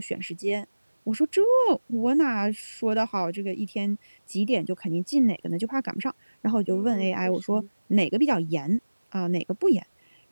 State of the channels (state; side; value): inverted; both; correlation -1.00